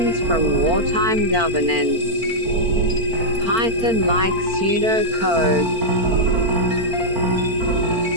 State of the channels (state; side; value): late; left; 4.4 ms